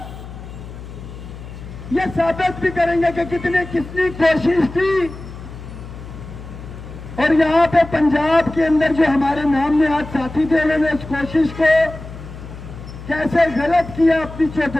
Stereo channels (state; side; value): noise; left; hum, 13 dB below the sound